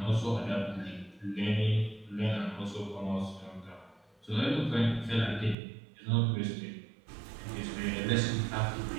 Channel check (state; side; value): drops out; left; at 5.6 s